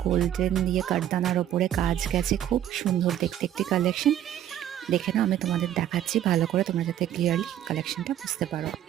গোল্ডেন দিয়ে কাঠদানার ওপরে কাজ গেছে, খুব সুন্দর দেখতে একটি কালেকশন। দেখে নাও, আমি তোমাদের দেখাচ্ছি ভালো করে, তোমরা যাতে ক্লিয়ারলি কালেকশনটা বুঝতে পারো।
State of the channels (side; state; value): left; quieter; 11.4 dB